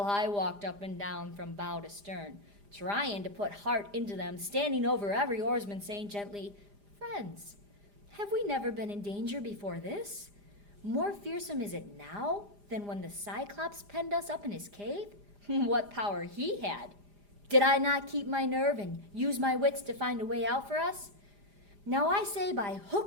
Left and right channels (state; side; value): late; left; 4.9 ms